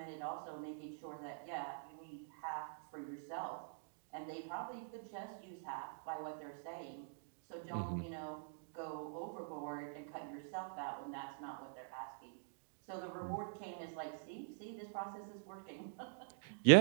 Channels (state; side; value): silent; left; digital silence